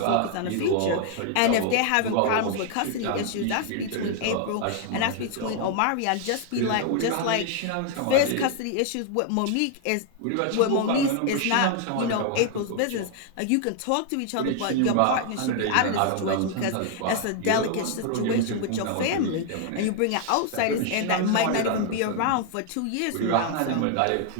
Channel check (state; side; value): different; both; correlation 0.00